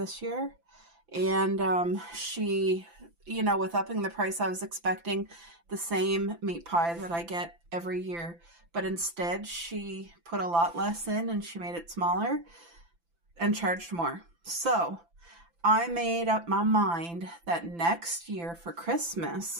year. And she, you know, with upping the price, I was expecting the same meat pie that I get every year. But instead, she put a lot less in, and she made it smaller and charged more. So I made up my mind that next year for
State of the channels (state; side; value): late; left; 5.9 ms